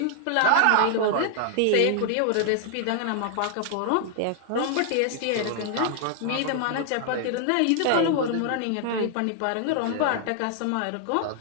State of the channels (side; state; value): both; different; correlation 0.00